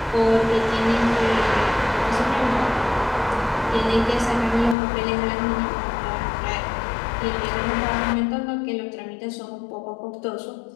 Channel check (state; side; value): drops out; right; at 4.8 s